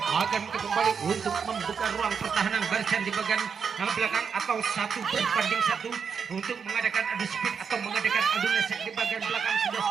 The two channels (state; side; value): quieter; left; 6.4 dB